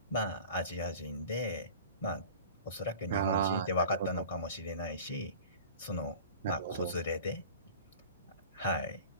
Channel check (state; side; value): inverted; both; correlation -0.39